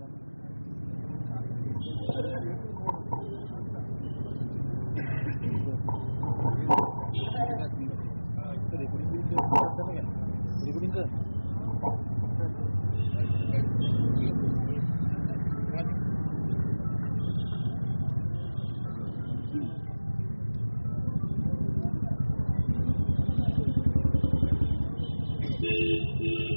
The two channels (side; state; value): both; inverted; correlation -1.00